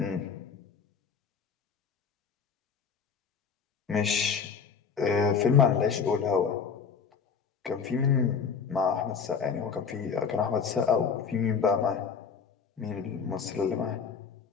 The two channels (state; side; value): quieter; right; 6.2 dB